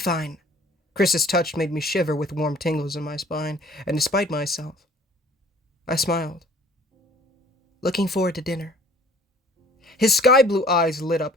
Chris's touch made me shiver with warm tingles in my spine, and despite myself, I smiled. "Looking forward to dinner." His sky-blue eyes lit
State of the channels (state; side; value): normal; both; correlation 0.53